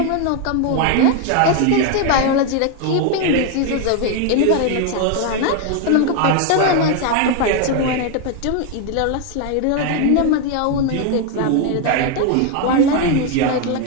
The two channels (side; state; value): both; different; correlation 0.01